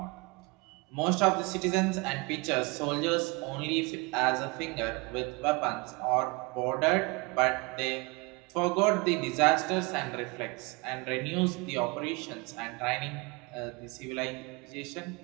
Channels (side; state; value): left; quieter; 27.7 dB